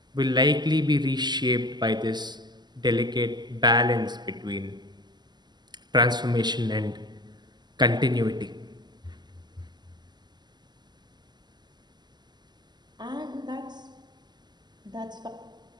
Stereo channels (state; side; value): late; left; 0.21 ms